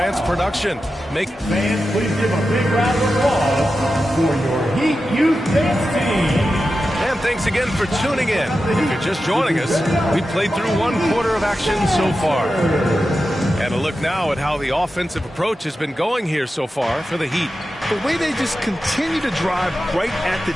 production. Fans, please give a big round of applause for your Heat Youth Dance team. And thanks again for tuning in. If you're just joining us, we played through 1 quarter of action so far. And a look now at how the offensive approach has been going here so far for the Heat. The way they just continue to drive right at the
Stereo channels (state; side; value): normal; both; correlation 0.91